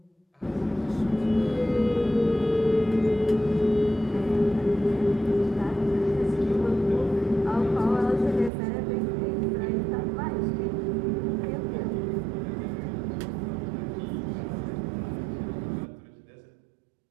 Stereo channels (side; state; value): left; drops out; at 8.5 s